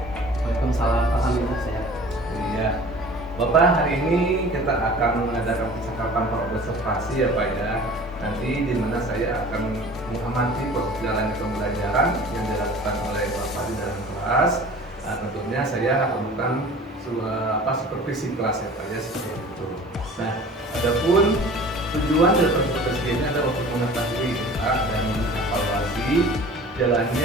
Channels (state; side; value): normal; both; correlation 0.44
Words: Waalaikumsalam, alhamdulillah sehat. Iya, Bapak, hari ini kita akan mengadakan percakapan observasi ya Pak ya. Nanti di mana saya akan mengamati proses jalannya pembelajaran yang dilakukan oleh Bapak di dalam kelas. Tentunya saya akan melakukan supervisi kelas ya Pak ya, seperti itu. Nah, adapun tujuan dari supervisi ini adalah untuk mengetahui dan mengevaluasi